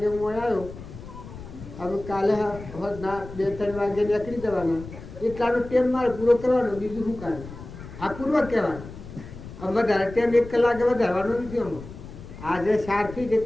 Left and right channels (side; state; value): left; noise; rumble, 14 dB below the sound